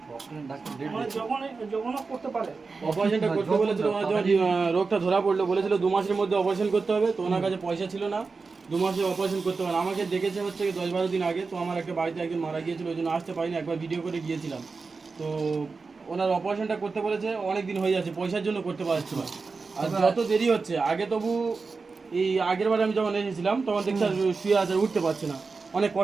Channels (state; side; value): quieter; left; 4.4 dB